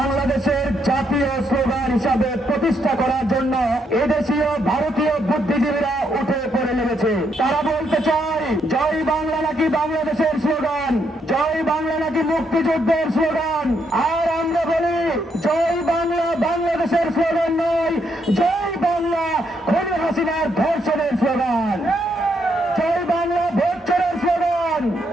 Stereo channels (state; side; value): normal; both; correlation 0.76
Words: জাতীয় স্লোগান হিসাবে প্রতিষ্ঠা করার জন্য এদেশীয় ভারতীয় বুদ্ধিজীবীরা উঠে পড়ে লেগেছে। তারা বলতে চায় জয় বাংলা নাকি বাংলাদেশের স্লোগান, জয় বাংলা নাকি মুক্তিযুদ্ধের স্লোগান। আর আমরা বলি জয় বাংলা বাংলাদেশের স্লোগান নয়, জয় বাংলা খুনি হাসিনার ধর্ষণের স্লোগান, জয় বাংলা ভোট চোরের স্লোগান,